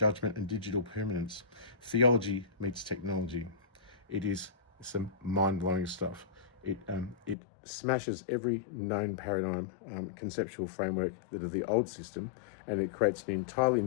and digital permanence. Theology meets technology. It is some mind-blowing stuff. It smashes every known paradigm, conceptual framework that of the old system, and it creates an entirely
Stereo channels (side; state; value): right; drops out; at 7.4 s